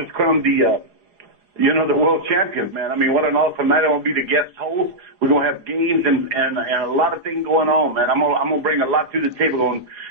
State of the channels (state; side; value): late; left; 4.8 ms